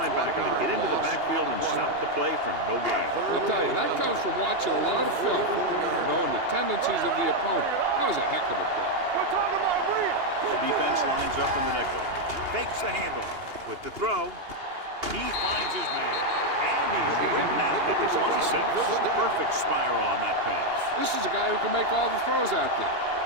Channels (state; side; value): late; left; 2.8 ms